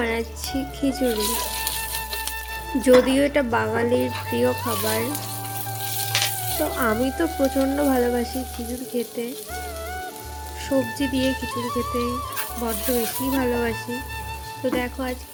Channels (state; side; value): identical; both; correlation 1.00